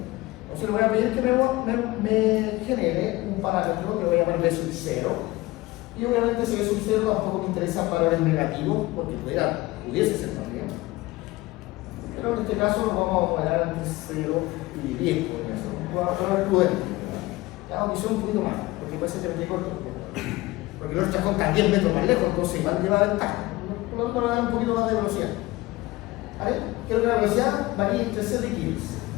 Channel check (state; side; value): quieter; right; 19.8 dB